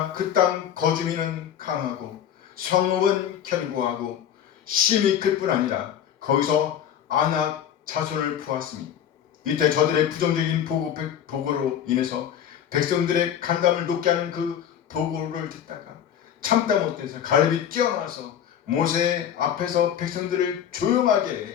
그 땅 거주민은 강하고 성읍은 견고하고 심이 클 뿐 아니라 거기서 아낙 자손을 부었으니 이때 저들의 부정적인 보고로 인해서 백성들의 간담을 높게 하는 그 보고를 듣다가 참다 못해서 갈렙이 뛰어나서 모세 앞에서 백성들을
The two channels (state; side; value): quieter; right; 9.5 dB